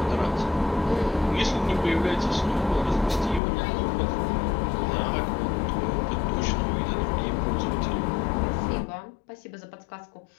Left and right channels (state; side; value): drops out; right; at 3.4 s